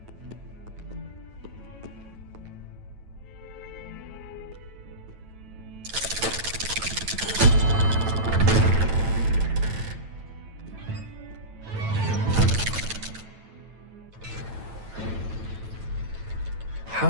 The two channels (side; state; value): left; late; 9.1 ms